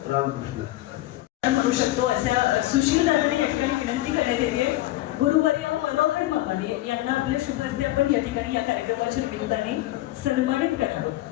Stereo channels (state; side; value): quieter; right; 16.5 dB